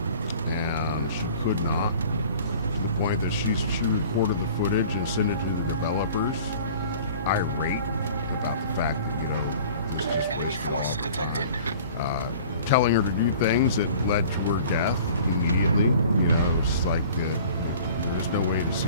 and she could not, to the point that she recorded the footage and sent it to the developers, irate about the fact that, this just Enemy wasted force all the detected. time. Telling her to do things that led to her death immediately. It's like there's no way to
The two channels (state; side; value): inverted; both; correlation -0.47